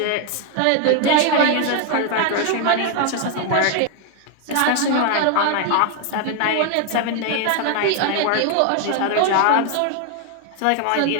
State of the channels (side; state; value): both; different; correlation 0.01